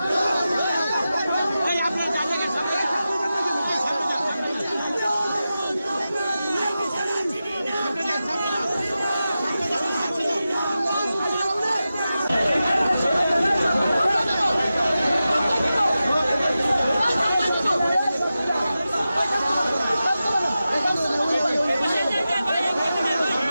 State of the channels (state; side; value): inverted; both; correlation -0.93